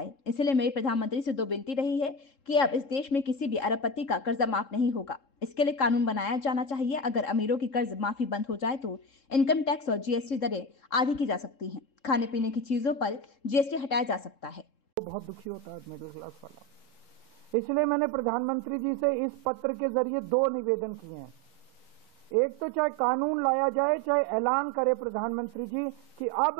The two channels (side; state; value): right; late; 3.7 ms